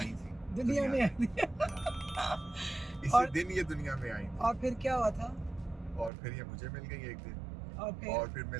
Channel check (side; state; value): left; drops out; at 6.1 s